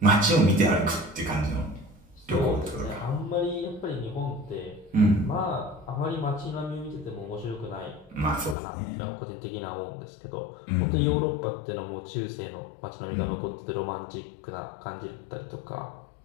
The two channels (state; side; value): drops out; right; at 8.6 s